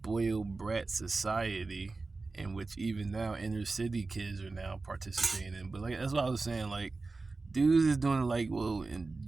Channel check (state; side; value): quieter; left; 3.7 dB